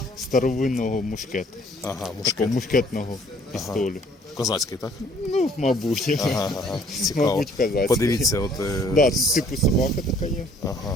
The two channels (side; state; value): both; normal; correlation 0.60